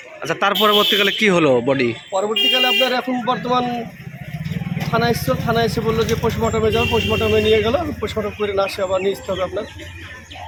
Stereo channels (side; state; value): both; identical; correlation 1.00